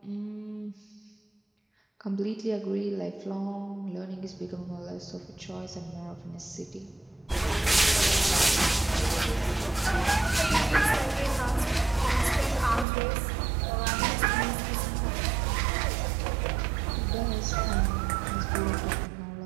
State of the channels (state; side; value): drops out; left; at 12.9 s